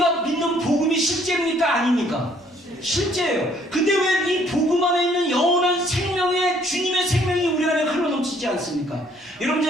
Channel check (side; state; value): both; normal; correlation 0.63